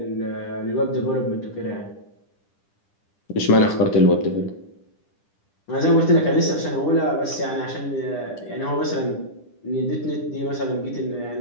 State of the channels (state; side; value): late; right; 10 ms